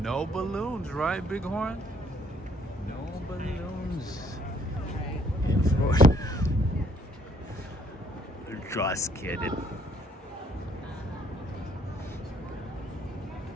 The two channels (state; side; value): normal; both; correlation 0.65